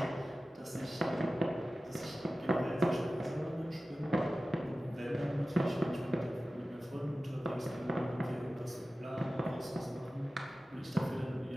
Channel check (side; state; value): both; normal; correlation 0.95